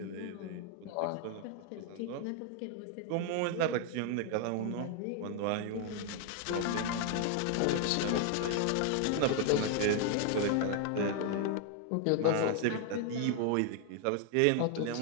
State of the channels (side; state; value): both; different; correlation 0.00